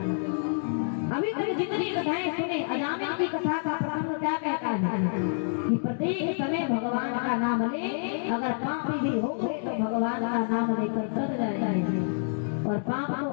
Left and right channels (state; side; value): silent; right; digital silence